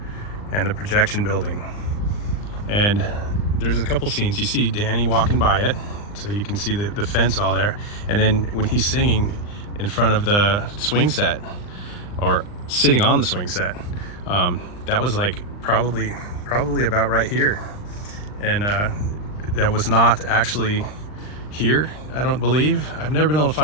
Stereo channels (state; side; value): late; right; 39 ms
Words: and the projection building. And there's a couple scenes. You see Danny walking by it, so you can see the fence all there. And then when he's singing in front of the swing set, or sitting on the swing set, that was like probably about right here. And that was not actually here, I don't believe. I've never been able to